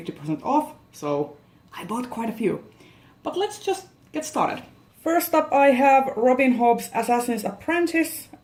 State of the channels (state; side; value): identical; both; correlation 1.00